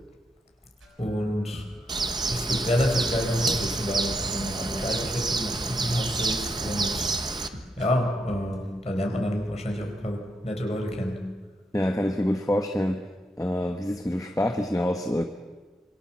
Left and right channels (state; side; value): normal; both; correlation 0.81